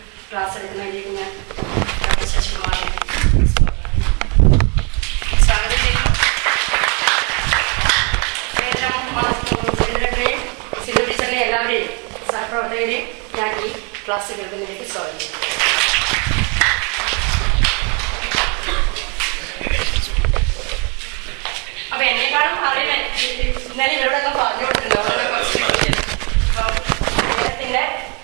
ക്ലാസ് എടുക്കുന്നതിലേക്ക് ഞാൻ ശശികുമാറിനെ സ്വാഗതം ചെയ്യുന്നു. സെക്രട്ടറിയും സിന്ധു ടീച്ചറിനെ എല്ലാവരെയും സഹപ്രവർത്തകരെയും ഞാൻ ഈ ക്ലാസ് കേൾക്കുന്നതിലേക്ക് സ്വാഗതം ചെയ്യുന്നു. അപ്പൊ എന്നെക്കാളും അറിയാൻ ഇന്നലെ ഇവരോടൊക്കെ പറഞ്ഞു കൊടുത്തിട്ടുണ്ടോ? അദ്ദേഹത്തിന്റെ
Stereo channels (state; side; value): quieter; left; 33.9 dB